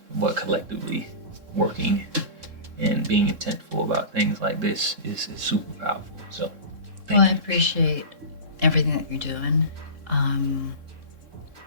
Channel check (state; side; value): late; left; 3.7 ms